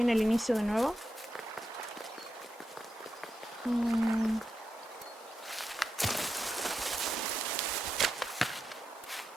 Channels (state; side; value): normal; both; correlation 0.87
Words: en el inicio de nuevo.